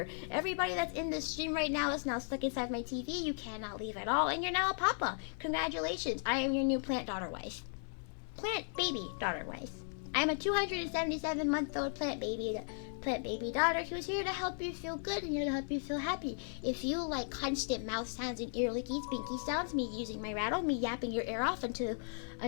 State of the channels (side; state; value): right; silent; digital silence